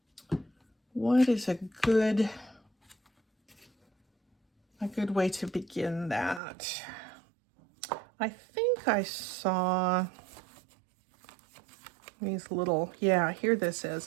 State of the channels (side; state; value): left; drops out; at 6.4 s